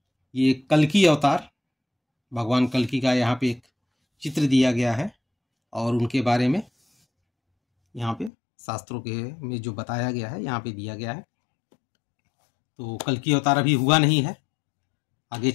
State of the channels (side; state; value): right; drops out; at 8.3 s